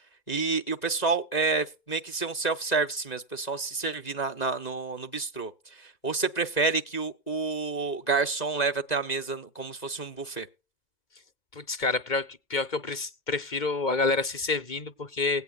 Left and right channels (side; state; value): right; late; 1.9 ms